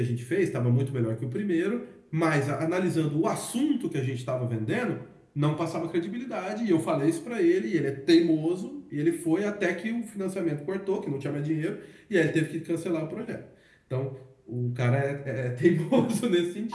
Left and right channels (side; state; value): both; identical; correlation 1.00